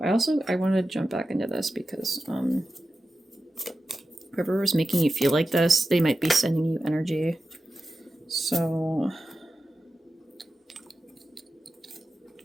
I want to jump back into this because whoever was making you feel like this, they might be sending you energy. So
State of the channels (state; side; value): normal; both; correlation 0.93